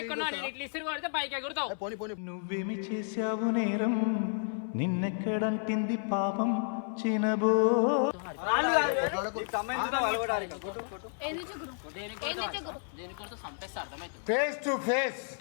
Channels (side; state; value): right; silent; 57 dB below the other